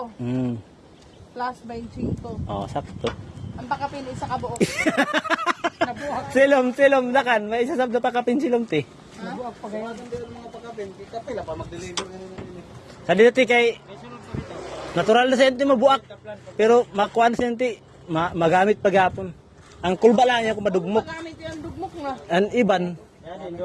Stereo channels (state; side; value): identical; both; correlation 1.00